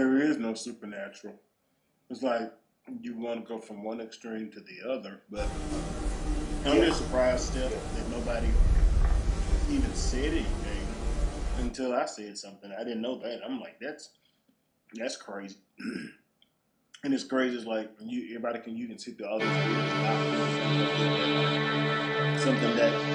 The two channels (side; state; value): both; identical; correlation 1.00